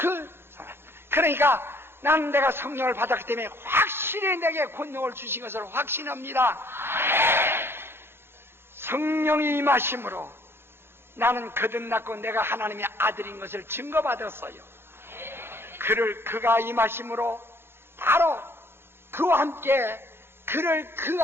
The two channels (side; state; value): left; late; 0.11 ms